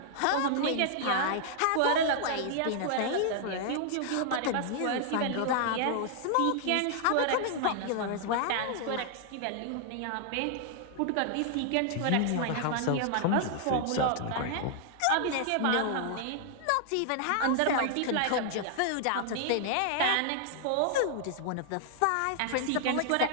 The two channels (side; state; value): both; different; correlation 0.00